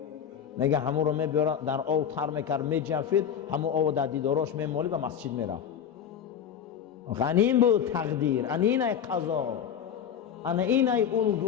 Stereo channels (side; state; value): right; quieter; 8.5 dB